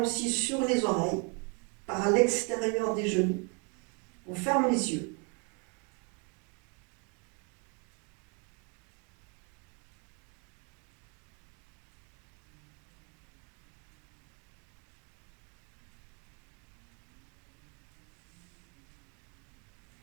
sur les oreilles, par l'extérieur des genoux. On ferme les yeux.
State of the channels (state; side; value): quieter; left; 34.0 dB